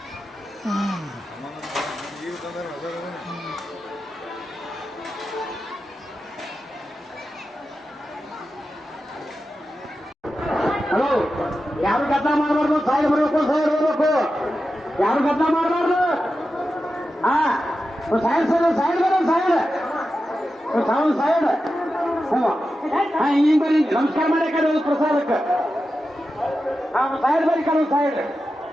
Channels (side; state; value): both; normal; correlation 0.91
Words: ಈಗ ತಂದ್ರೆ ಅದ ಹಲೋ, ಯಾರು ಗದ್ದ ಮಾಡಬಾರ್ದು, ಸೈಡ್ ಬರಬೇಕು, ಸೈಡ್ ಬರಬೇಕು, ಯಾರು ಗದ್ದ ಮಾಡಬಾರ್ದು. ಹಾ, ಸೈಡ್ ಸೈಡ್ ಸೈಡ್ ಬರೋ ಸೈಡ್ ಸೈಡ್. ಹಾ, ಈಗ ಬರೀ ನಮಸ್ಕಾರ ಮಾಡಿ ಕಡೆ ಪ್ರಸಾದಕ್ಕೆ. ಹಾ, ಸೈಡ್ ಬರೀ ಕಡೆ ಸೈಡ್.